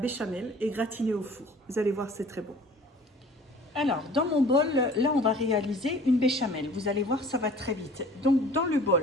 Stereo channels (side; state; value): both; normal; correlation 0.48